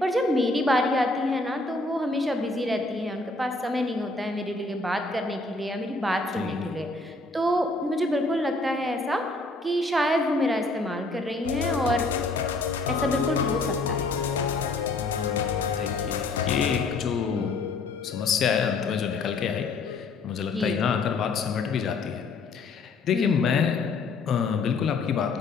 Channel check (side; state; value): right; quieter; 3.4 dB